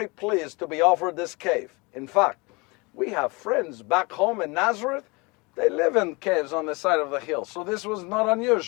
pleased to be offered this cave. In fact, we have friends back home in Nazareth. They live in caves on the side of the hill. So this was not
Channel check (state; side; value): quieter; right; 26.9 dB